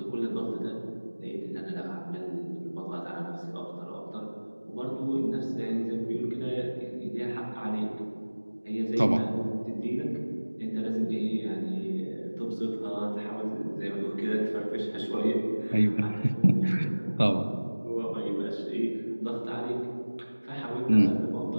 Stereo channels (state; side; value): inverted; both; correlation -1.00